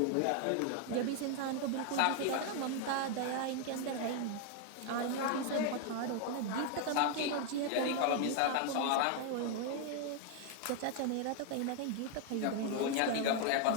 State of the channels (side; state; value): both; different; correlation 0.00